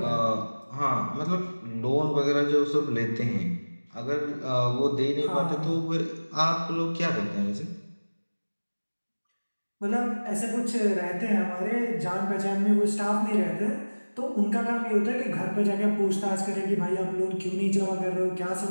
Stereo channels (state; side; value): inverted; both; correlation -1.00